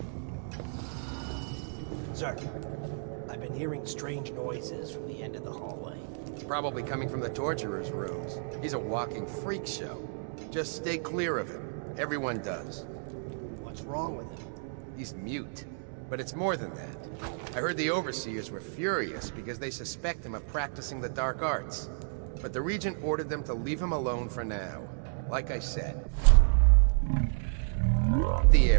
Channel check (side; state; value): left; silent; digital silence